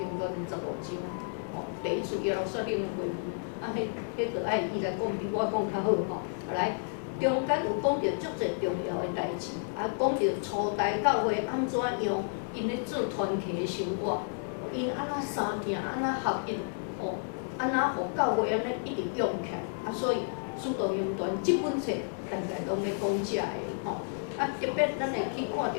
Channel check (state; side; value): silent; right; 57 dB below the other